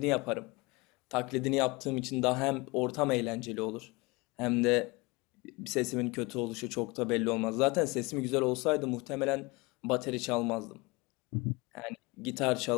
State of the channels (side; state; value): right; quieter; 25.2 dB